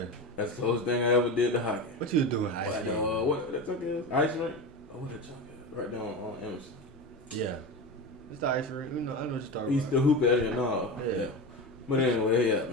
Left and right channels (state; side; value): normal; both; correlation 0.23